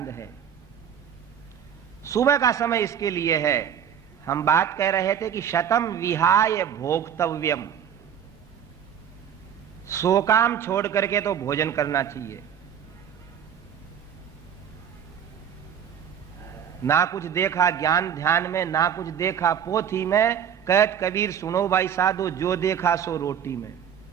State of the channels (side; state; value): left; quieter; 8.6 dB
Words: है। सुबह का समय इसके लिए है। हम बात कह रहे थे कि शतम विहाय भोक्तव्यम, 100 काम छोड़ करके तो भोजन करना चाहिए। ना कुछ देखा ज्ञान ध्यान में, ना कुछ देखा पोथी में, कहत कबीर सुनो भाई साधो, जो देखा सो रोटी में।